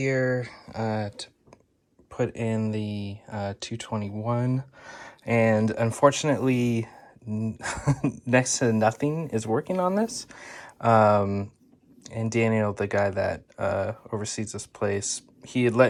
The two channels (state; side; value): identical; both; correlation 1.00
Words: to put in the 221, and unfortunately, next to nothing is working on this. And Daniel, the guy that oversees this place, he had